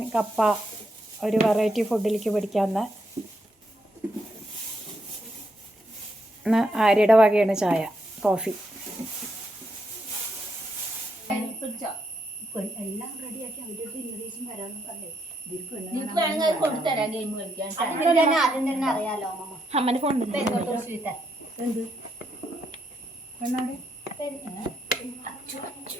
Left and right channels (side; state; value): both; normal; correlation 0.78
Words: കപ്പ ഒരു വെറൈറ്റി ഫുഡിലേക്ക് പിടിക്കാമെന്ന്. ഇന്ന് ആര്യയുടെ വകയാണ് ചായ, കോഫി. എല്ലാം റെഡിയാക്കി അവരുടെ ഇംഗ്ലീഷും വരാമെന്ന് പറഞ്ഞേ. അറിയാലോ അമ്മന്റെ ഫോൺ എന്ത്